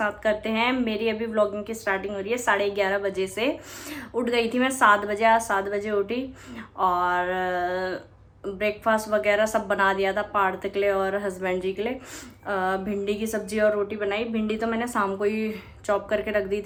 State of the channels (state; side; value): identical; both; correlation 1.00